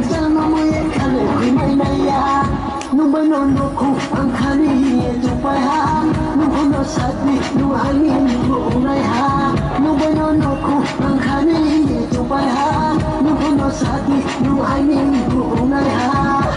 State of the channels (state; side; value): identical; both; correlation 1.00